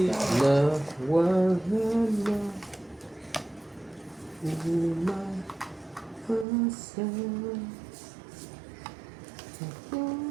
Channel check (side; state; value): left; drops out; at 6.5 s